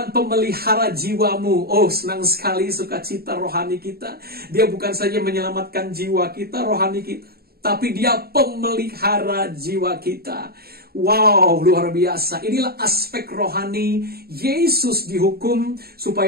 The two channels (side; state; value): left; late; 0.45 ms